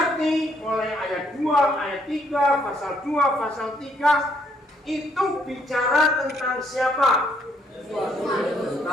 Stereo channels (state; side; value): normal; both; correlation 0.69